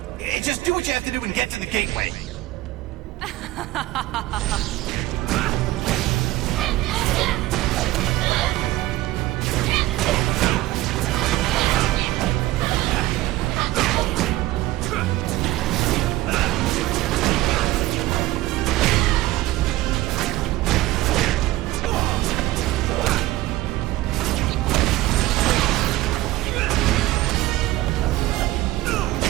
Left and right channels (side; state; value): left; quieter; 17.2 dB